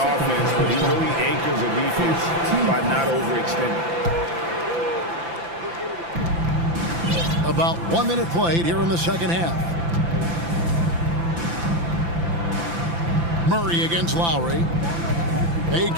but he really anchors a defense by not overextending. About 1 minute played here in the second half. Murray against Lowry. Bay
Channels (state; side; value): late; left; 5.9 ms